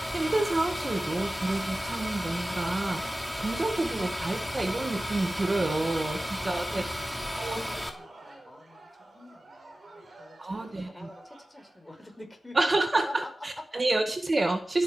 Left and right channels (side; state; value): both; normal; correlation 0.96